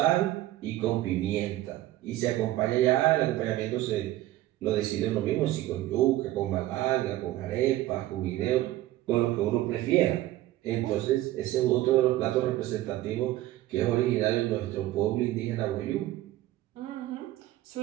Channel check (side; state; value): left; quieter; 15.4 dB